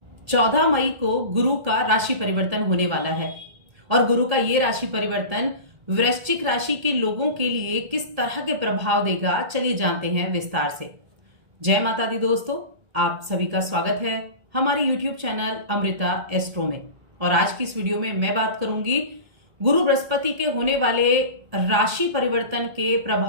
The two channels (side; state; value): left; late; 1.7 ms